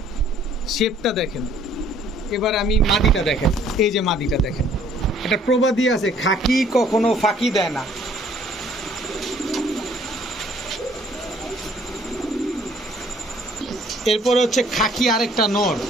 শেপটা দেখেন। এবার আমি মাদিটা দেখেন, এই যে মাদিটা দেখেন, এটা প্রবাদী আছে, খাকি কখনো ফাঁকি দেয় না। এরপরে হচ্ছে খাকি আরেকটা নর,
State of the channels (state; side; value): normal; both; correlation 0.59